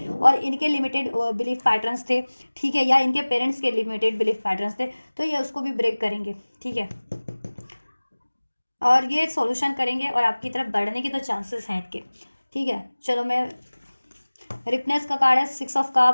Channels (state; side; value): inverted; both; correlation -1.00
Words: और इनके लिमिटेड बिलीफ पैटर्न्स थे, ठीक है, या इनके पेरेंट्स के लिमिटेड बिलीफ पैटर्न्स थे, तो ये उसको भी ब्रेक करेंगे, ठीक है। और ये सॉल्यूशन करेंगे और आपकी तरफ बढ़ने की तो चांसेस हैं इनके, ठीक है। चलो, मैं रिपनेस का कार्ड है, 6 of